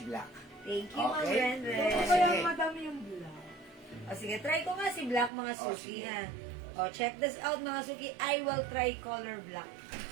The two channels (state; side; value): drops out; left; at 5.3 s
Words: Thank you, Ma'am Okay. Renden. Sige. Kaya madami yung bulak. Sige, try ko nga si Black, mga suki, sige. ha? Check this out, mga suki. I will try color black.